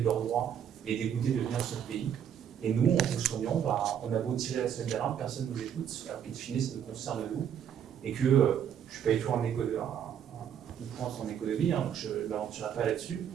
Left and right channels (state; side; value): quieter; left; 8.9 dB